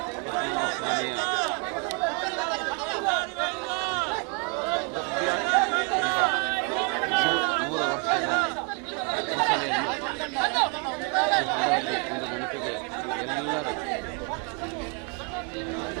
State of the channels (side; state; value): left; quieter; 34.3 dB